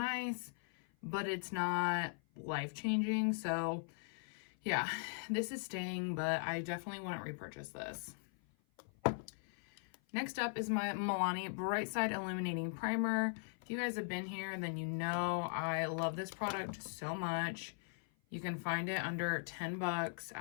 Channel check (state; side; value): silent; right; 51 dB below the other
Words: but it's not life-changing. So yeah, this is staying, but I definitely wouldn't repurchase this. Next up is my Milani Bright Side Illuminating Primer. If you guys have been here, then you know I love this product so much. You can find it under $10